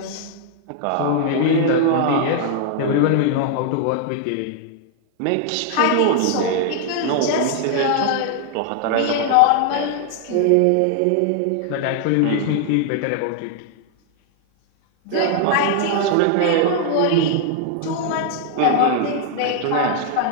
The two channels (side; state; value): both; different; correlation 0.00